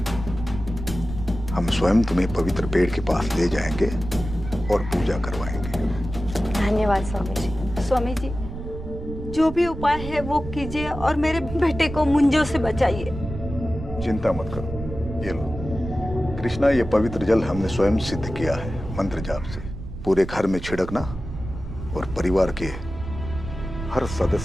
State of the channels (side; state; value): right; noise; rumble, 9 dB below the sound